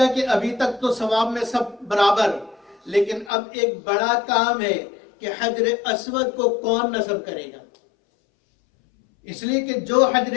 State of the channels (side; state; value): right; drops out; at 3.3 s